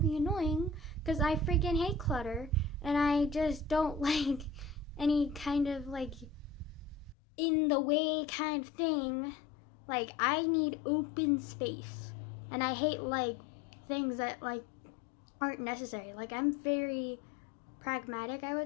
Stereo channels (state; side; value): drops out; right; at 7.2 s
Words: annoying because I freaking hate clutter and I just don't like any kind of like in the way kind of thing. Like, I need open space, and I hate like things that like aren't necessary. Like, I'm very pragmatic, I